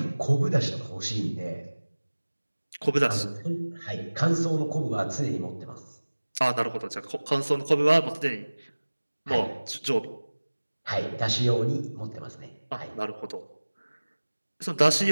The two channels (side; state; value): both; inverted; correlation -1.00